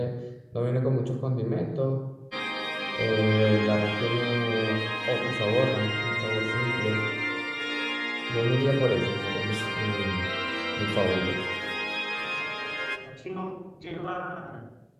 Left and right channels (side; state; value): both; identical; correlation 1.00